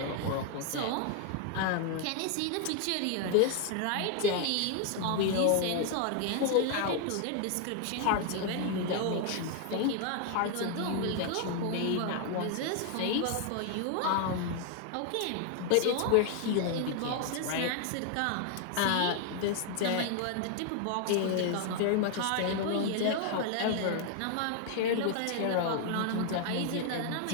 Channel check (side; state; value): both; different; correlation 0.00